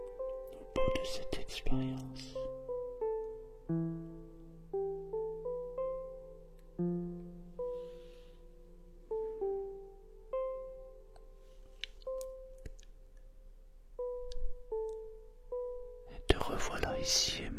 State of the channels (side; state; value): both; identical; correlation 1.00